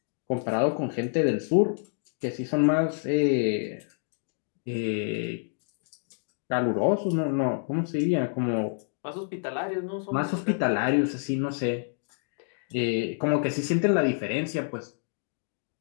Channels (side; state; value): right; silent; digital silence